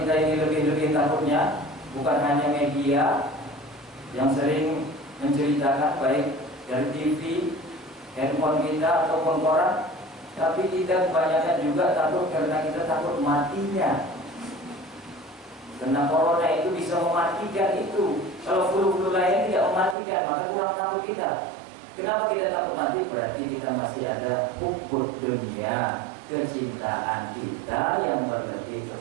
ini lebih-lebih takutnya? Bukan hanya media yang sering menceritakan, baik dari TV, handphone kita ataupun koran, tapi kita kebanyakan juga takut karena kita takut matinya. Karena corona itu bisa mematikan itu. Kalau flu-flu lain tidak mematikan, maka kurang takut kita. Kenapa kita takut mati? Berarti kita masih ada hubbud dunia, kecintaan kita yang berlebih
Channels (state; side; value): drops out; left; at 20.0 s